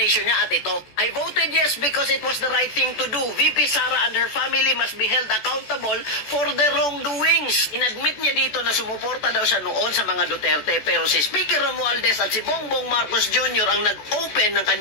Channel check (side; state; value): right; late; 14 ms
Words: niya at ito. I voted yes because it was the right thing to do. VP Sara and her family must be held accountable for their wrongdoings. Inadmit niya dito na sumuporta daw siya noon sa mga Duterte, pero si Speaker Romualdez at si Bongbong Marcos Jr. ang nag-open ng